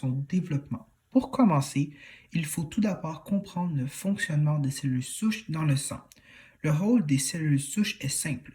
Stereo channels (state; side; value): identical; both; correlation 1.00